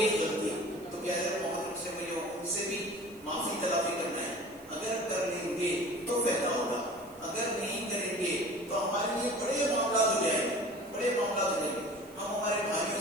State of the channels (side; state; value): right; noise; hiss, 24 dB below the sound